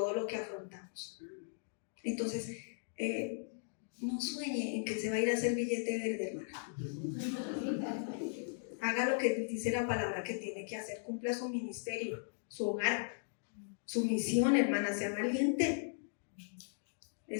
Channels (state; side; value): silent; right; digital silence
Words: lo que afrontamos. Entonces, no sueñe en que se va a ir a hacer billete verde, hermana. Haga lo que dice la palabra que tiene que hacer, cumpla su ministerio, su hogar, su misión, hermana, sea valiente.